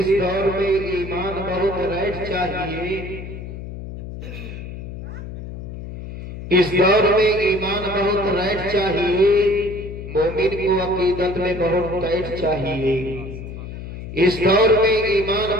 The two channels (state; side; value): noise; left; hum, 10 dB below the sound